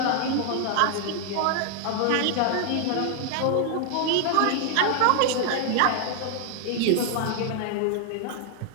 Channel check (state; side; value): different; both; correlation 0.00